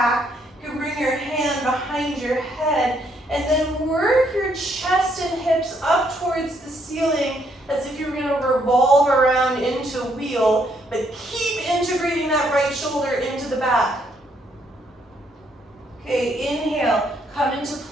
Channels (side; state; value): both; normal; correlation 0.71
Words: You can bring your hand behind your head and then work your chest and hips up towards the ceiling as if you're going to revolve around into a wheel, but keep integrating that right shoulder into the back. Okay, inhale, come into